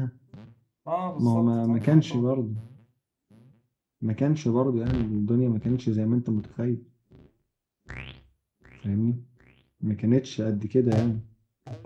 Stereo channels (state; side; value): identical; both; correlation 1.00